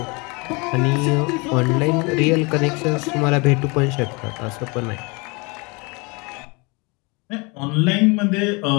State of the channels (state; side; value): quieter; right; 28.5 dB